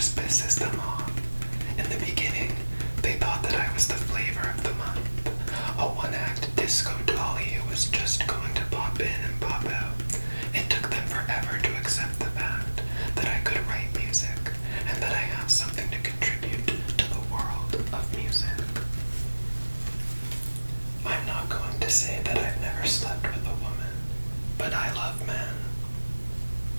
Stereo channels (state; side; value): inverted; both; correlation -1.00